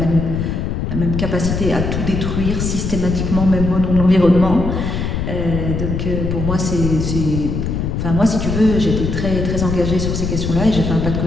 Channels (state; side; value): noise; left; rumble, 2 dB below the sound